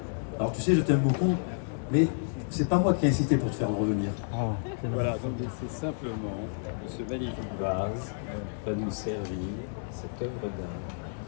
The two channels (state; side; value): silent; right; digital silence